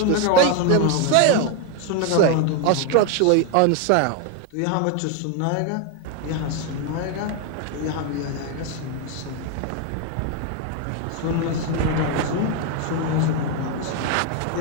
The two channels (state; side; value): different; both; correlation 0.01